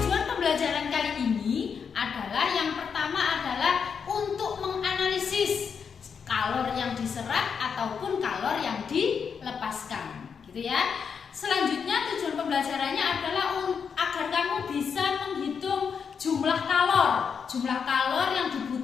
pembelajaran kali ini adalah yang pertama adalah untuk menganalisis kalor yang diserap ataupun kalor yang dilepaskan, gitu ya. Selanjutnya tujuan pembelajarannya adalah agar kamu bisa menghitung jumlah kalor yang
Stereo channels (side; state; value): right; quieter; 6.5 dB